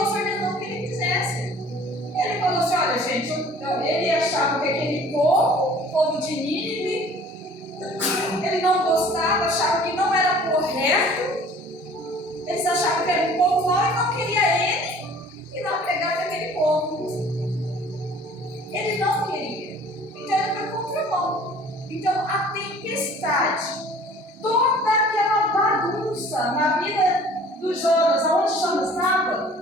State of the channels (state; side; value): normal; both; correlation 0.50